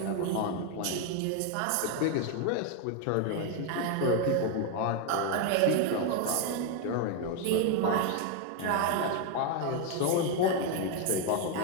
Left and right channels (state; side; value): different; both; correlation 0.01